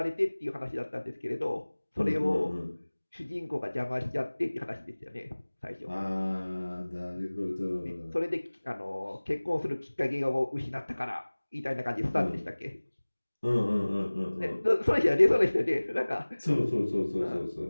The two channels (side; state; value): both; inverted; correlation -1.00